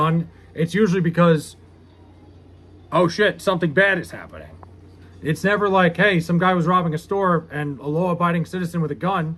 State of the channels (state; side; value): identical; both; correlation 1.00